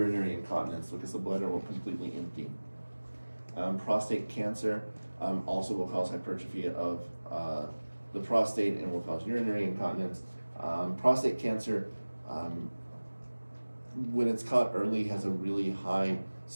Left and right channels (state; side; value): inverted; both; correlation -1.00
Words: incontinence because the bladder will completely empty. Prostate cancer also will cause hypertrophy of the prostate and will cause urinary incontinence. Prostate cancer, when it's caught early, has a really high